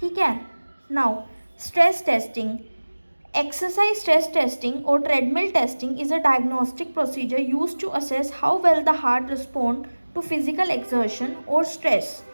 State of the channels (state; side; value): inverted; both; correlation -1.00